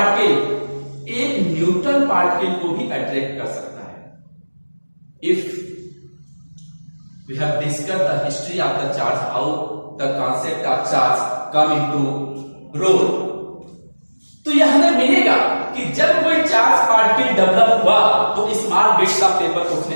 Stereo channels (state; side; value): inverted; both; correlation -1.00